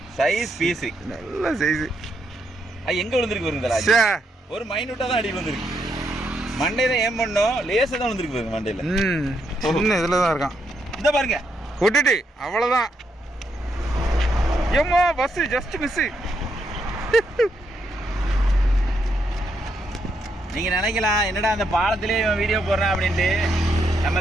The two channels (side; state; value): both; normal; correlation 0.78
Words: சைஸ் பீஸு, நல்ல சைஸு. அது எங்கே விழுந்துருக்கு வருங்களா? ஒரு மைனூட்டாக தான் அடி விழுந்துருக்கு. மண்டே தான் ஏன் பண்ணோம், லேசாக தான் விழுந்துருக்கு பாருங்க மண்டையில். சின்ன இதில் தான் இருக்கான். இந்த பாருங்க கொட்டுட்டு அவ்வளோதான். ஏம்மா பஸ்ஸு ஜஸ்ட் மிஸ்ஸு. நீங்கள் நினைக்கலாம் என்னடா அந்த பாலத்திலே வீடியோ போடுறேன் அப்படின்ட்டு. நம்ம